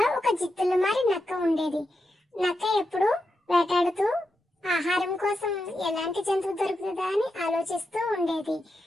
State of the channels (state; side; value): normal; both; correlation 0.87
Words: ఒక జిత్తులమారి నక్క ఉండేది. నక్క ఎప్పుడు వేటాడుతూ ఆహారం కోసం ఎలాంటి జంతువు దొరుకుతుందా అని ఆలోచిస్తూ ఉండేది.